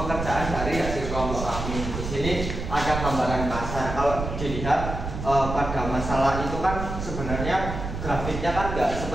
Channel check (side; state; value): right; noise; rumble, 5 dB below the sound